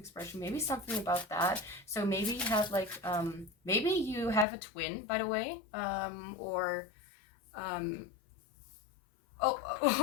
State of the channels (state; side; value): drops out; right; at 4.5 s